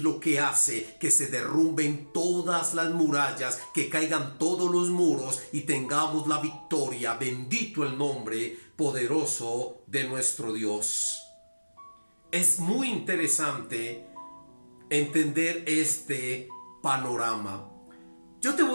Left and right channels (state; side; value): inverted; both; correlation -1.00